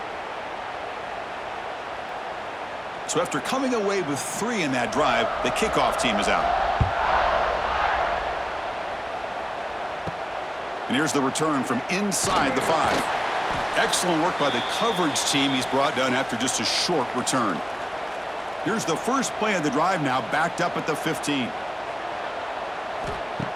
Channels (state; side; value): identical; both; correlation 1.00